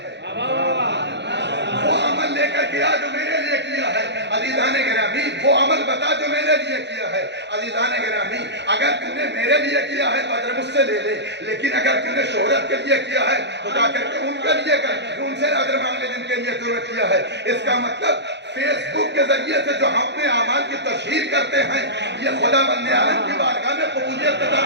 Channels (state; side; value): late; left; 0.51 ms